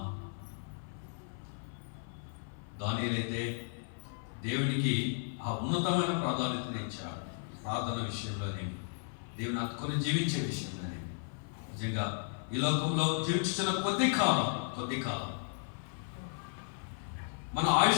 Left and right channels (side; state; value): right; silent; 55 dB below the other